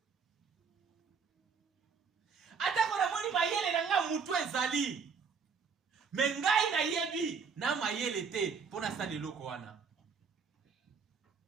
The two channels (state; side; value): quieter; left; 5.7 dB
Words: Atako na moni mayele na nga mutu ezali. Mengai na yebi na mayele te pona sali loko wana.